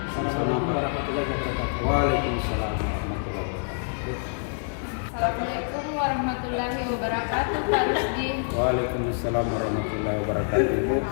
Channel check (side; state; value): right; silent; digital silence